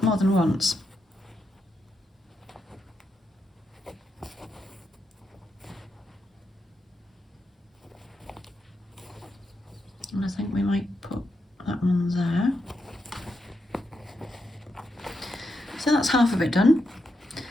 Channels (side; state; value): both; normal; correlation 0.84